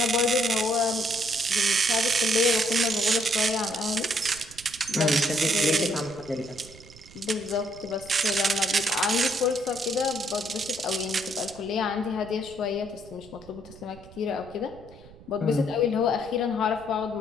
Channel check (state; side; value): noise; right; rumble, 21 dB below the sound